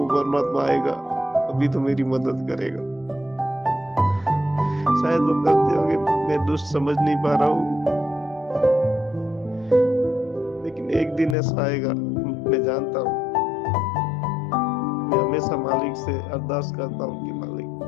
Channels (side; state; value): right; drops out; at 11.4 s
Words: परमात्मा आएगा, कभी तो मेरी मदद करेगा। शायद वो करते होंगे, मैं दुष्ट समझ नहीं पा रहा हूँ, लेकिन एक दिन ऐसा आएगा, मैं जानता हूँ। मैं हमेशा मालिक से अरदास करता हूँ कि मालिक